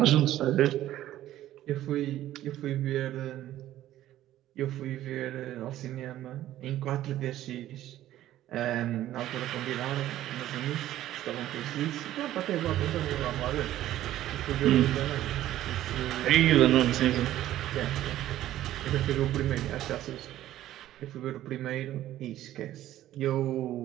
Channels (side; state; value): left; quieter; 13.5 dB